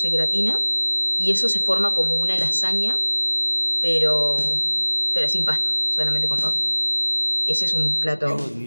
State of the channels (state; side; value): inverted; both; correlation -1.00